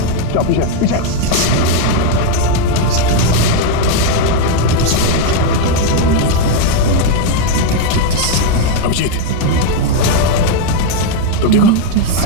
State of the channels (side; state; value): both; different; correlation 0.01